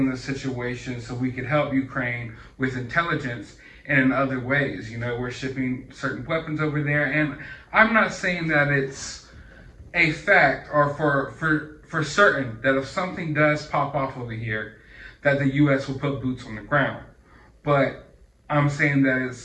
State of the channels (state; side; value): identical; both; correlation 1.00